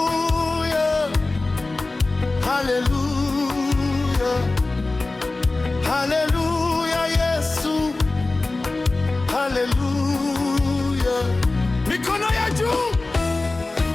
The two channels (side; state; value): right; quieter; 3.2 dB